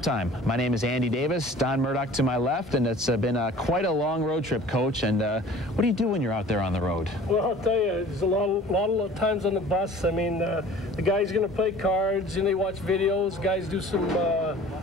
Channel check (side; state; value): both; normal; correlation 0.46